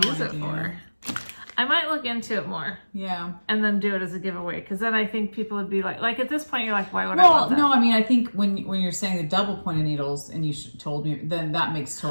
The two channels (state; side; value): inverted; both; correlation -1.00